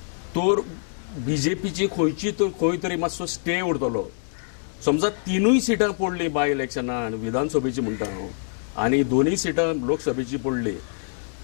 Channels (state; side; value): silent; right; 62 dB below the other